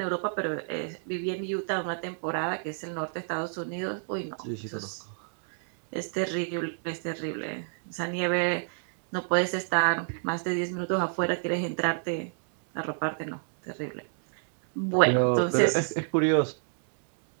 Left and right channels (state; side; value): silent; left; digital silence